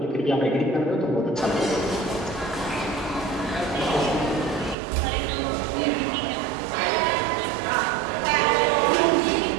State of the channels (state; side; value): drops out; left; at 4.8 s